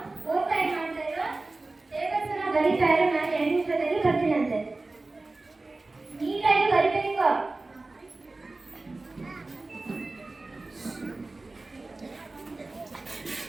4 ಟೈಮ್ ಮಾಡ್ತಾ ಇರೋ ಟೇಬಲ್ಸ್ ಅನ್ನ ಬರೀತಾ ಇರೋ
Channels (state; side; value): quieter; left; 3.2 dB